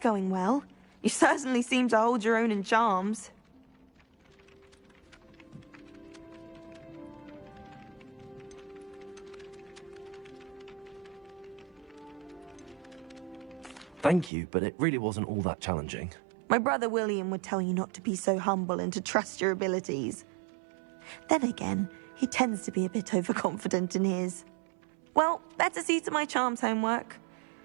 well. You certainly seem to hold your own in charms. Thank you, but it really wasn't all that challenging. My brother William would tell you not to be so humble and to trust your abilities. Then again, he tends to be a bit overconfident in his. Well, better see to my charms homework.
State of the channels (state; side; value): drops out; left; at 14.3 s